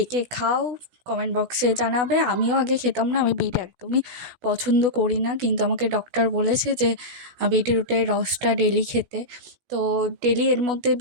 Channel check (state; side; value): late; left; 16 ms